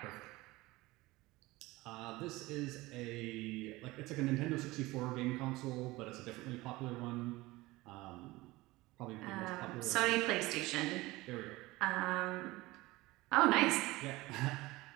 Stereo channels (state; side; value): quieter; left; 20.2 dB